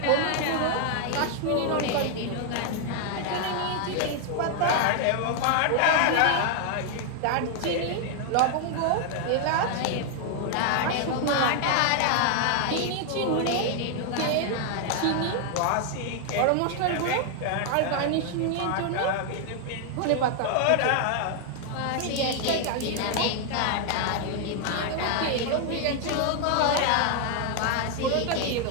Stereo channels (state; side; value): different; both; correlation 0.00